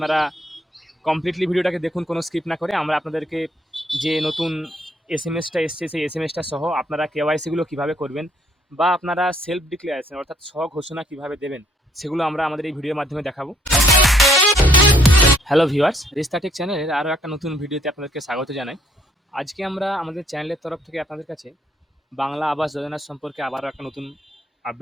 কমপ্লিটলি ভিডিওটাকে দেখুন, কোনো স্কিপ না করে। আমরা আপনাদেরকে যে নতুন এসএমএসটা এসছে সেই এসএমএসটা সহ আপনারা কেওয়াইসিগুলো কিভাবে করবেন বা আপনারা সেলফ ডিক্লারেশন অর্থাৎ স্বঘোষণা কিভাবে দেবেন সেগুলো আমরা আমাদের এই ভিডিওর মাধ্যমে দেখাবো। হ্যালো ভিউয়ার্স, রিস্তাটেক চ্যানেলের আরও একটা নতুন ভিডিওতে আপনাদেরকে স্বাগত জানাই। আজকে আমরা আমাদের চ্যানেলের তরফ থেকে আপনাদের কাছে বাংলা আবাস যোজনার সম্পর্কে আবারও একটা নতুন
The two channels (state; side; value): normal; both; correlation 0.66